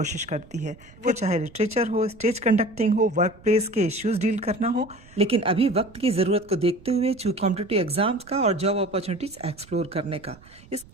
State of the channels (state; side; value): noise; right; rumble, 24 dB below the sound